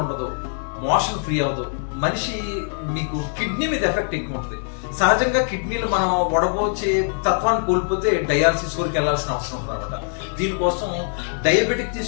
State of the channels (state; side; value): silent; right; 58 dB below the other